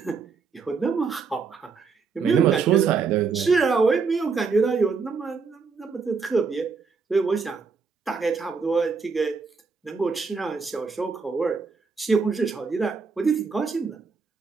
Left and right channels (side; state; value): left; quieter; 5.1 dB